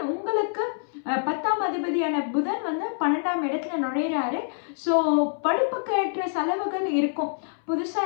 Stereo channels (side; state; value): right; silent; 61 dB below the other